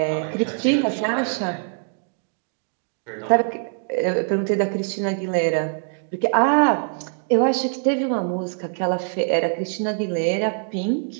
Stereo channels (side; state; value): left; silent; digital silence